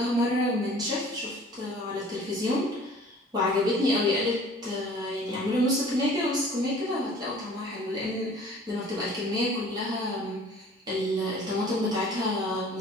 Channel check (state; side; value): normal; both; correlation 0.49